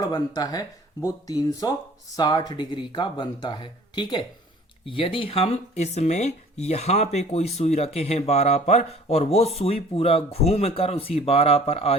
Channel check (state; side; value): normal; both; correlation 0.50